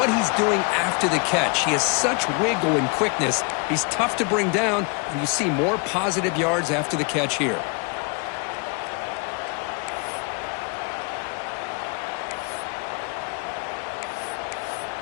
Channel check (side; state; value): right; quieter; 33.4 dB